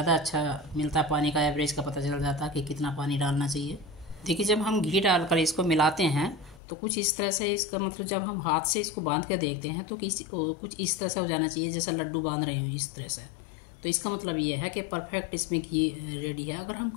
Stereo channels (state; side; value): drops out; right; at 6.6 s